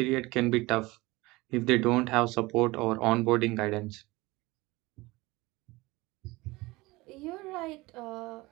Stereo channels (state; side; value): quieter; left; 21.5 dB